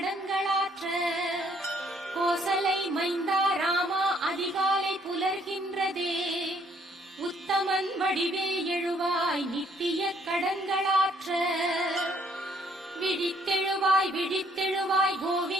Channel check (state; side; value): normal; both; correlation 0.65